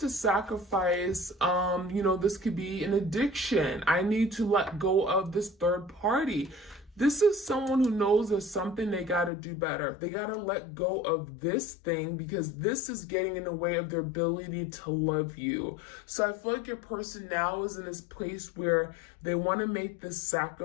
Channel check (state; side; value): drops out; right; at 9.3 s